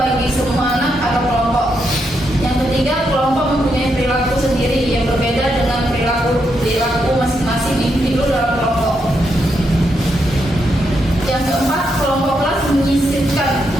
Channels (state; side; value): normal; both; correlation 0.81